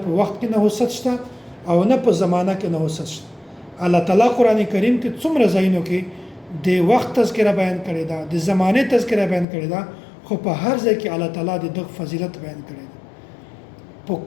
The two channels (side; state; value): right; drops out; at 9.5 s